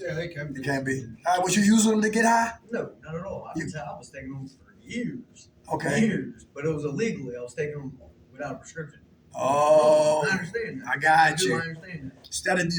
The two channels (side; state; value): both; identical; correlation 1.00